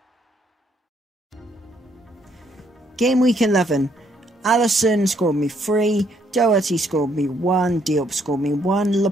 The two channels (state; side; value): normal; both; correlation 0.70